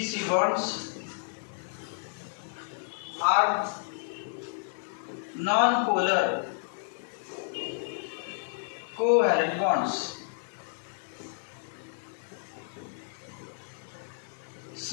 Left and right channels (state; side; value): silent; right; digital silence